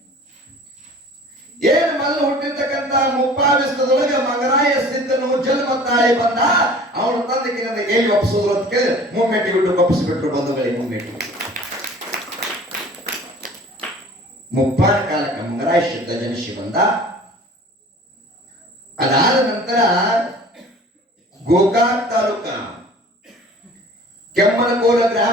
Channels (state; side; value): normal; both; correlation 0.46